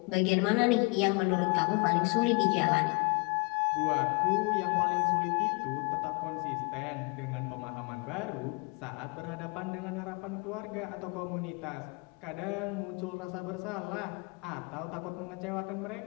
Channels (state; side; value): quieter; right; 31.3 dB